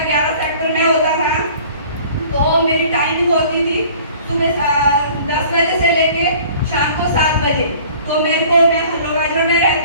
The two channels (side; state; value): both; inverted; correlation -0.49